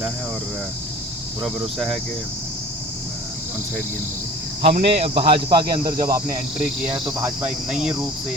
है और पूरा भरोसा है कि वन साइड गेम होगी। हमने भाजपा के अंदर जब आपने एंट्री किया है तो भाजपा एक नई रूप से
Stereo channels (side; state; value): both; normal; correlation 0.44